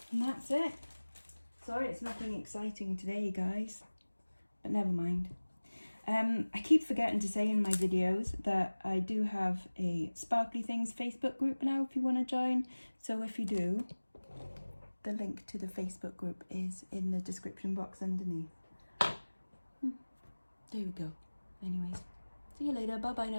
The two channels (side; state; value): both; inverted; correlation -1.00